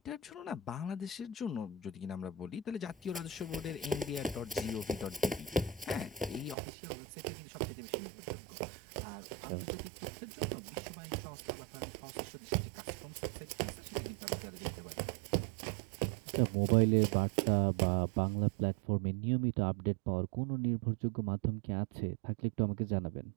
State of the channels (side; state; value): left; drops out; at 6.6 s